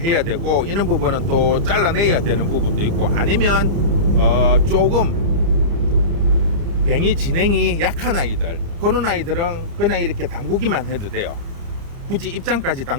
되고 이런 부분은 또 잘라내야 되는 부분도 있고, 아니면 조금 뱅이 진행이 약한 아이들, 그런 아이들은 그냥 이렇게 담그기만 해도 돼요. 굳이 입장까지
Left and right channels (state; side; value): late; left; 30 ms